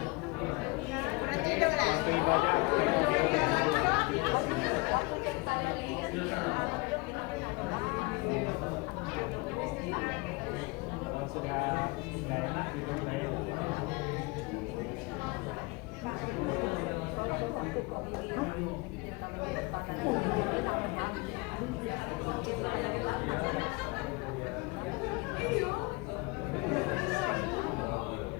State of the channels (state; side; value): quieter; right; 25.8 dB